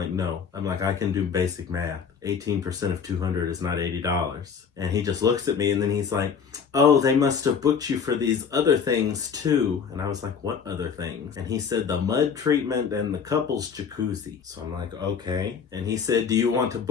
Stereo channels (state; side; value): quieter; right; 6.6 dB